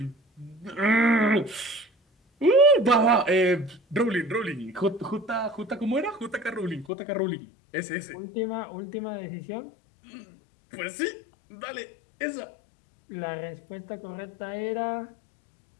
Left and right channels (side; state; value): right; drops out; at 6.9 s